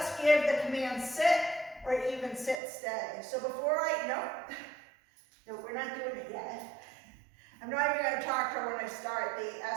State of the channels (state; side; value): drops out; left; at 2.6 s